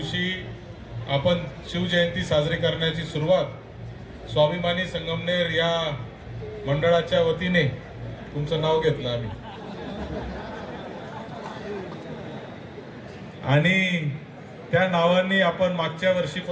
आपण शिवजयंती साजरी करण्याची सुरुवात स्वाभिमानी संगमनेर या मंडळाच्या वतीने, तुमचं नाव घेतलं आम्ही, आणि त्या नावाने आपण मागच्या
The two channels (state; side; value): identical; both; correlation 1.00